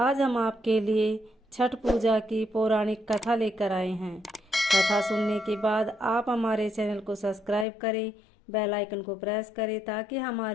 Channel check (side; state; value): right; drops out; at 7.7 s